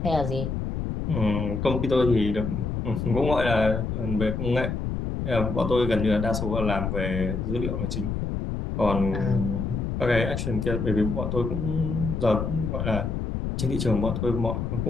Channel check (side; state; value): left; noise; rumble, 2 dB below the sound